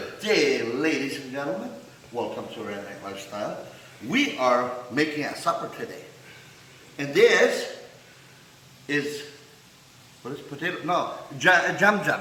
day, ladies and gentlemen. Welcome to Redneck Lifestyle. We are making a supper today. And this is, what is potato? No,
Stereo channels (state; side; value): identical; both; correlation 1.00